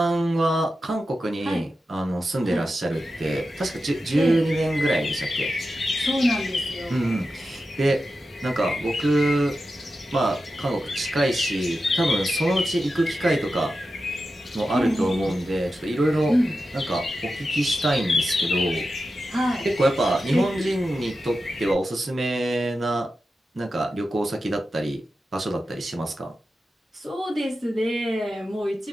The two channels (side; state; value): both; normal; correlation 0.91